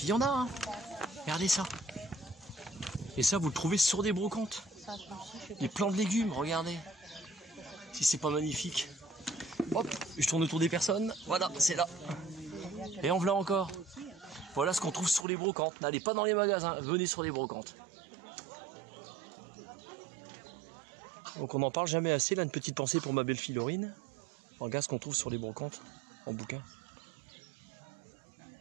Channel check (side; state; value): left; drops out; at 15.2 s